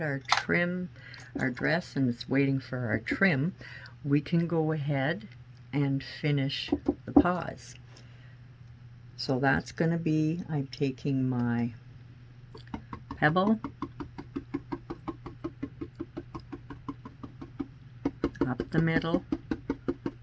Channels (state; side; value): identical; both; correlation 1.00